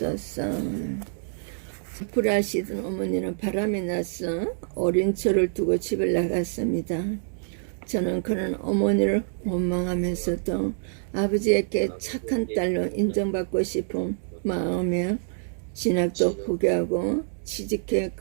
불하시던 어머니는 바람이 나서 어린 저를 두고 집을 나갔습니다. 저는 그런 어머니를 원망하면서도 아버지에게 착한 딸로 인정받고 싶은 마음에 진학도 포기하고 취직해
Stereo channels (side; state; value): left; silent; digital silence